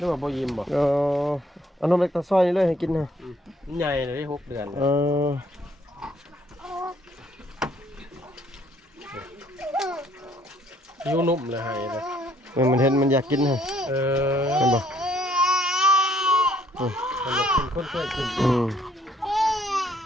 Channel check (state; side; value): normal; both; correlation 0.65